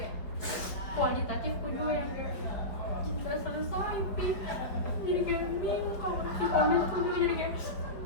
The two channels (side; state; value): right; late; 4.7 ms